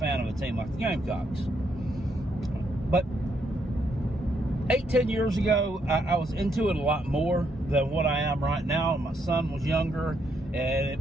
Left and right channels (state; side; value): normal; both; correlation 0.75